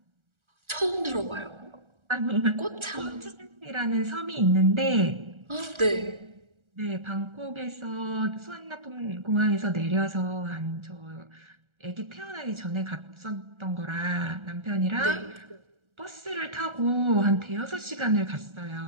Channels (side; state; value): left; late; 1.3 ms